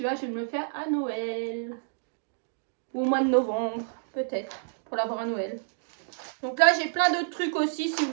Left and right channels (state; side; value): silent; left; digital silence